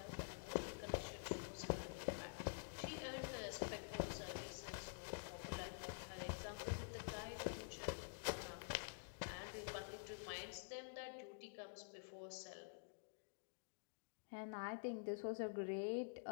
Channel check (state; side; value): silent; right; digital silence